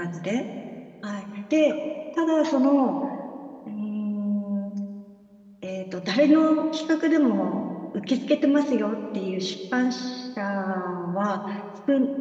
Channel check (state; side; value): identical; both; correlation 1.00